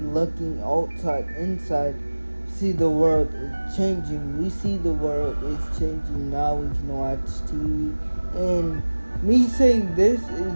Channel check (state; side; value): inverted; both; correlation -1.00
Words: outside, inside, see the world is changing. We see the world is changing now. We can watch TV, and me saying this is